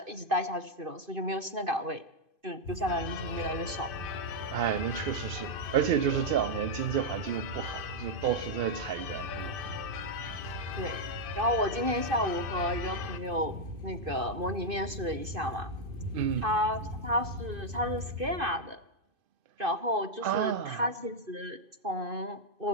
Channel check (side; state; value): left; late; 2.5 ms